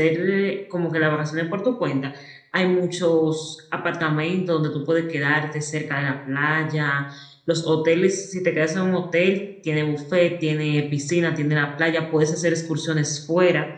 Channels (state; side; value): identical; both; correlation 1.00